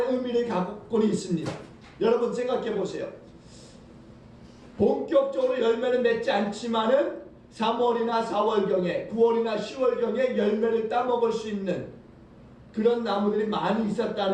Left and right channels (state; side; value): identical; both; correlation 1.00